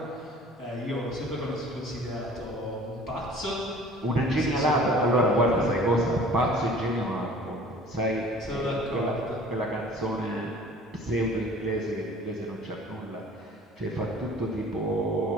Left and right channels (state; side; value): normal; both; correlation 0.48